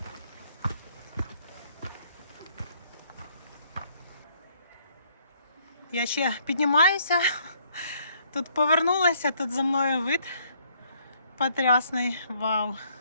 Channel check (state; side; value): inverted; both; correlation -0.65